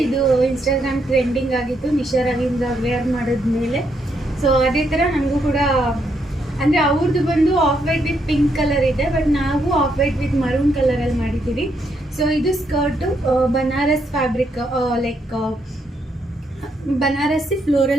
ಇದು ಇನ್ಸ್ಟಾಗ್ರಾಮ್ ಟ್ರೆಂಡಿಂಗ್ ಆಗಿತ್ತು ನಿಶಾ ರವೀಂದ್ರ ವೇರ್ ಮಾಡಿದ್ಮೇಲೆ. ಸೊ ಅದೇ ಥರ ನನಗೂ ಕೂಡ ಅಂದರೆ ಅವ್ರದ್ದು ಬಂದು off white with pink colour ಇದೆ, ಬಟ್ ನಾವು ಆಫ್ ವೈಟ್ ವಿತ್ ಮರೂನ್ ಕಲರಲ್ಲಿ ಮಾಡಿದ್ದೀವಿ. ಸೊ ಇದು skirt Banaras fabric, like Banarasi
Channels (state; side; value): normal; both; correlation 0.77